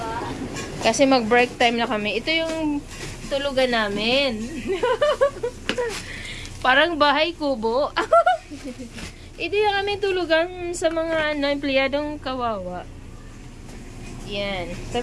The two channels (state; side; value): identical; both; correlation 1.00